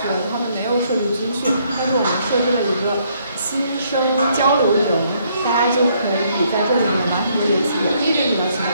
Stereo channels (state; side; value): inverted; both; correlation -0.69